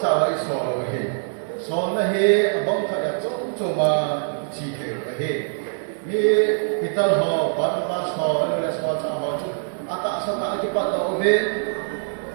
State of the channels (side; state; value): left; silent; digital silence